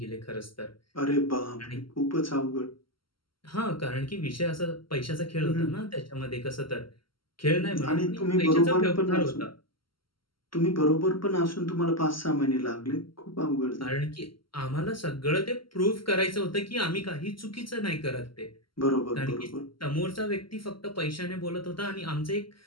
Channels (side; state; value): right; late; 0.74 ms